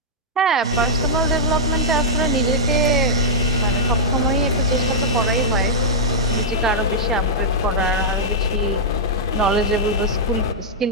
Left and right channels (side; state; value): both; normal; correlation -0.09